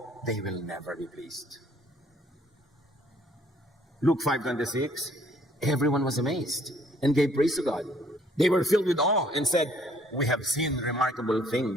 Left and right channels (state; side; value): normal; both; correlation 0.62